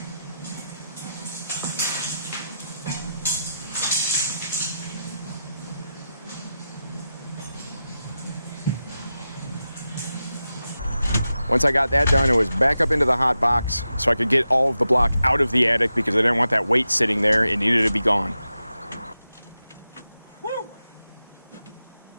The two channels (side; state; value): both; inverted; correlation -0.90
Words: Once I got that done, it was back up into the hot box so I could get all of the block out of the attic because I didn't want that weight sitting there. It needed to be gone. Woo!